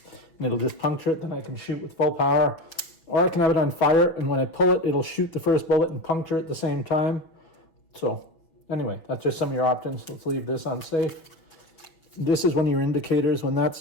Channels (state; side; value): late; right; 6.2 ms